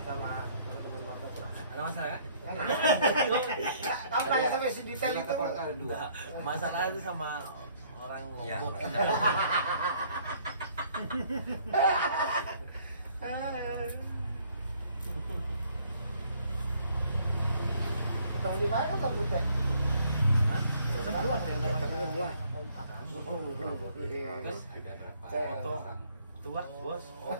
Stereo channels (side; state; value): both; inverted; correlation -0.62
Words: sama teman-teman Marta? Ada masalah kan? Kamu tanya sampai sedetail itu. Enggak. Masalah itu sama orang Ya, Lombok. Tahu di mana kamu teh? Terus Ada berapa foto orang? tua, bos.